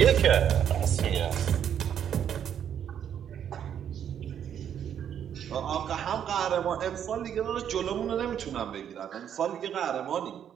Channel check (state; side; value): quieter; left; 9.1 dB